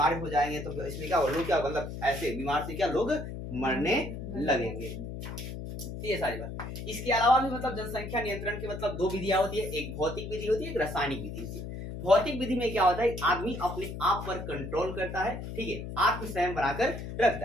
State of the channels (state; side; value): noise; left; hum, 8 dB below the sound